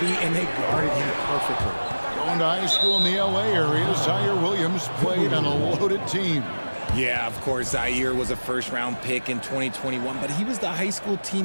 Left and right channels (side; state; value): both; inverted; correlation -1.00